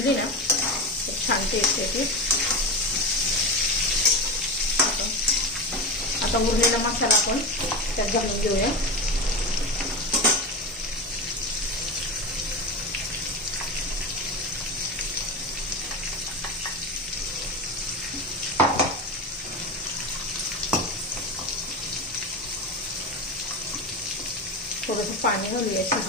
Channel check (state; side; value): normal; both; correlation 0.21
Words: ना छान टेस्ट येते. आता उरलेला मसाला आपण त्यात घालून घेऊया. थोडंसं पाणी घालूया